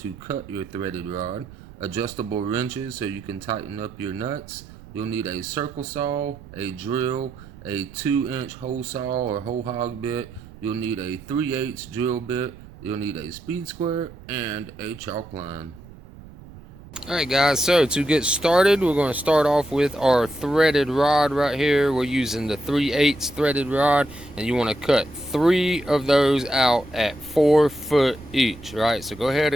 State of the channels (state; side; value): noise; right; rumble, 18 dB below the sound